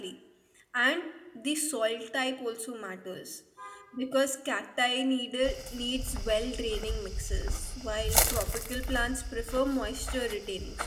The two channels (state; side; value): identical; both; correlation 1.00